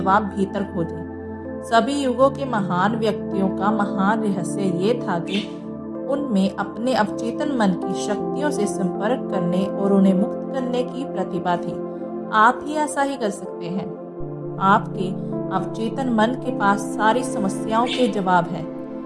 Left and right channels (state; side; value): identical; both; correlation 1.00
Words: भीतर खोजें। सभी युगों के महान व्यक्तियों का महान रहस्य ये था कि उनमें अपने अवचेतन मन की शक्तियों से संपर्क करने और उन्हें मुक्त करने की प्रतिभा थी। आप ही ऐसा ही कर सकते हैं। आपके अवचेतन मन के पास सारी समस्याओं के जवाब हैं।